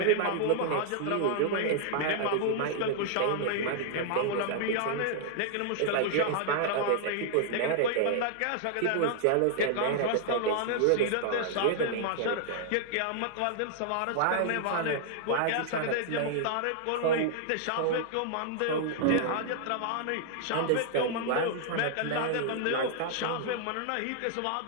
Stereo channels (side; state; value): both; different; correlation -0.01